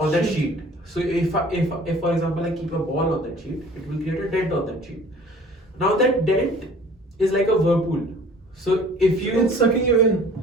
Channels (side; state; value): both; normal; correlation 0.50